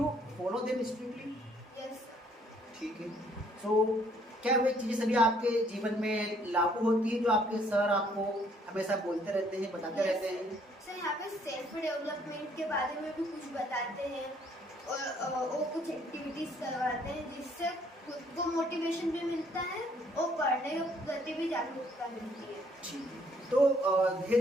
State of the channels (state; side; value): normal; both; correlation 0.65